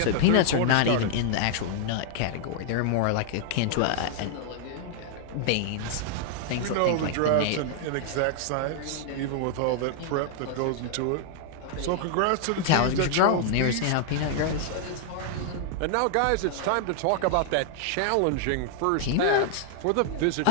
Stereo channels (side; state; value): both; different; correlation 0.00